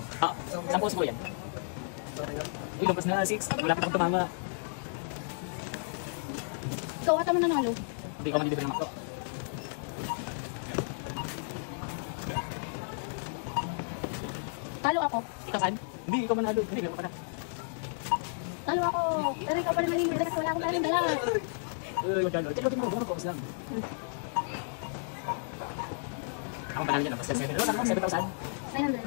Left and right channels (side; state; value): right; silent; digital silence